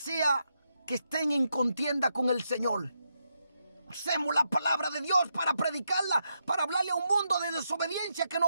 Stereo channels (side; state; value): both; inverted; correlation -0.83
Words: que estén en contienda con el Señor. Usemos la palabra de Dios para predicarla, para hablarle a un mundo de desobediencia que no